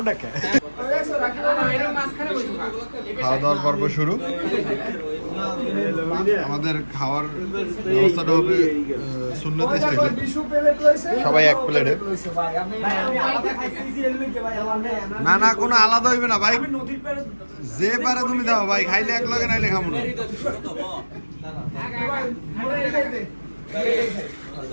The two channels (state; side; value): inverted; both; correlation -1.00